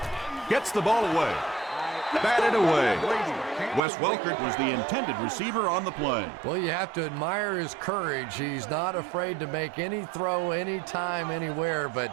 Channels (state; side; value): drops out; left; at 3.8 s